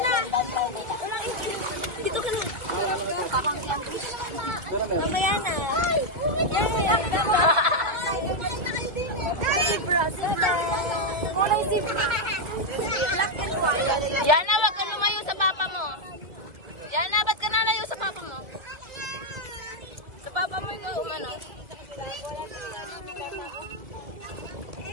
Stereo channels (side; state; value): left; late; 1.8 ms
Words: Yana, wag ka lumayo sa papa mo. Yana, ba't ka nalayo sa papa mo? Sa papa mo ikaw, ano?